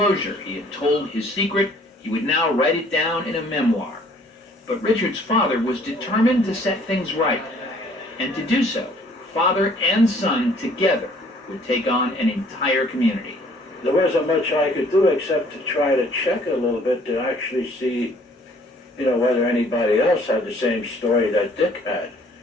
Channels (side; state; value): both; normal; correlation 0.58